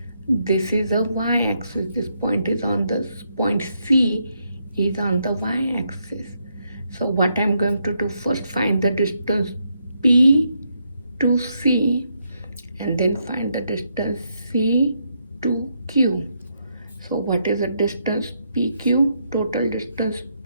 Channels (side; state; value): both; inverted; correlation -0.78